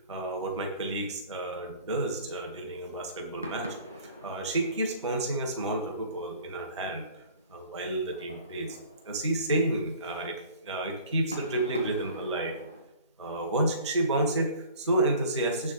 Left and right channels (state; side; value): inverted; both; correlation -0.47